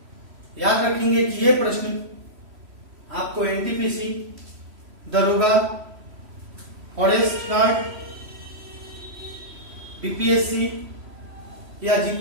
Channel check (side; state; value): left; late; 3.1 ms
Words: याद रखेंगे कि ये प्रश्न आपको एनटीपीसी, दरोगा, फॉरेस्ट गार्ड, बीपीएससी या